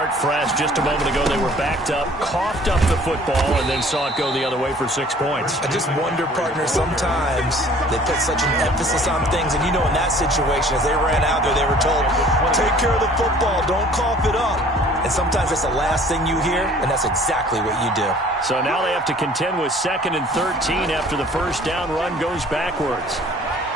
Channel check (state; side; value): normal; both; correlation 0.52